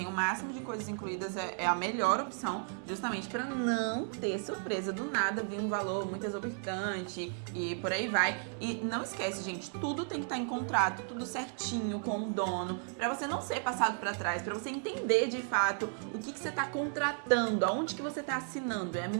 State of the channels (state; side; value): silent; left; 55 dB below the other